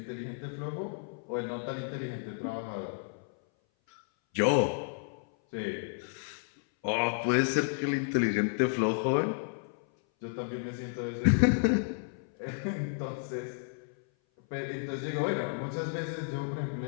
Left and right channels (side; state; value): right; silent; 56 dB below the other